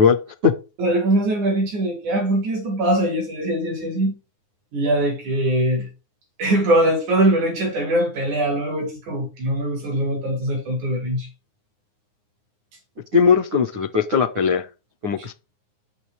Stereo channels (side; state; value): left; late; 9.6 ms